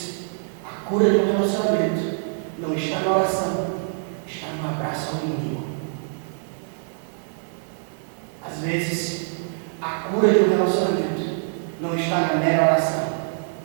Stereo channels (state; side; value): silent; left; digital silence